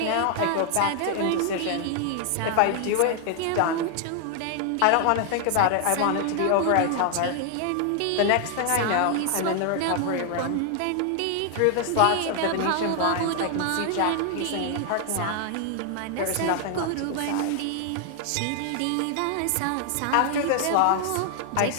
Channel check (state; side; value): different; both; correlation 0.00